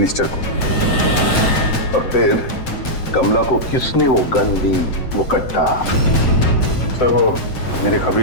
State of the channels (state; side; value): late; right; 7.7 ms